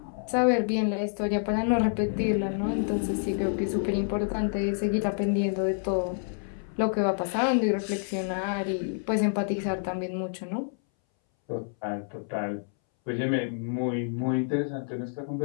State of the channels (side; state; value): right; silent; 59 dB below the other